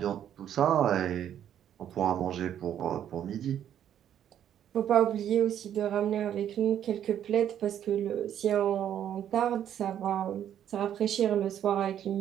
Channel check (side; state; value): left; quieter; 10.1 dB